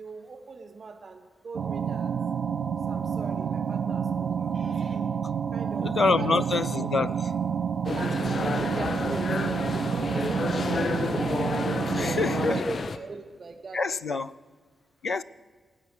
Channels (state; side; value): normal; both; correlation 0.77